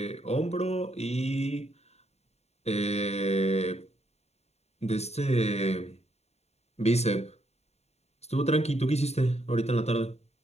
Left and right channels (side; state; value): right; late; 0.31 ms